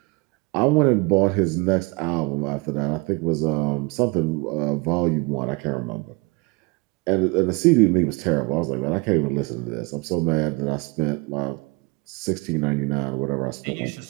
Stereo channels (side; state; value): left; quieter; 27.7 dB